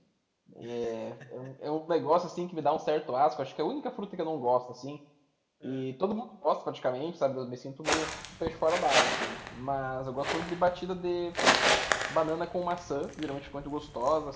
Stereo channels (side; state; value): both; identical; correlation 1.00